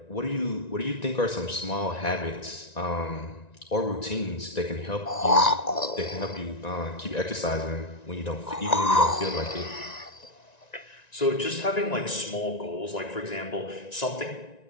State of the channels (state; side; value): late; right; 1.9 ms